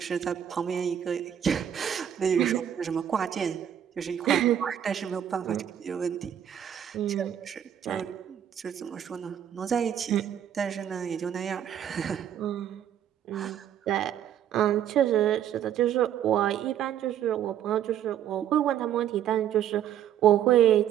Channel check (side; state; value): left; quieter; 9.9 dB